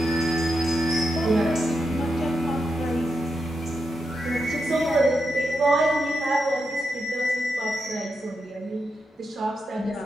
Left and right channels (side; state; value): both; normal; correlation 0.86